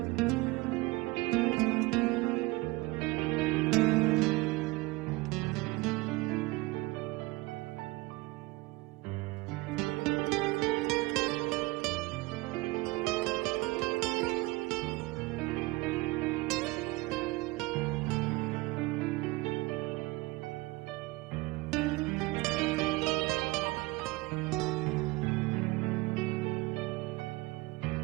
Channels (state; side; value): quieter; left; 22.5 dB